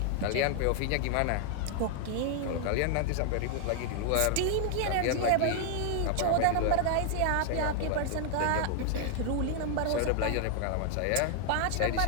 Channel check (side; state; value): both; different; correlation 0.00